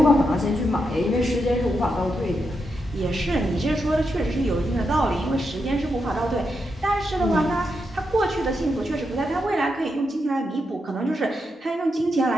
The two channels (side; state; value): both; normal; correlation 0.84